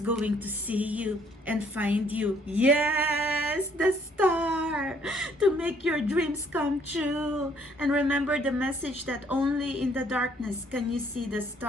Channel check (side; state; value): both; normal; correlation 0.64